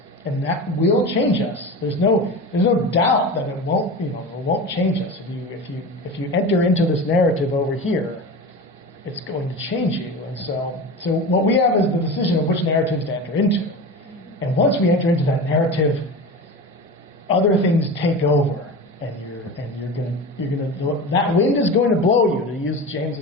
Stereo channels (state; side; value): normal; both; correlation 0.29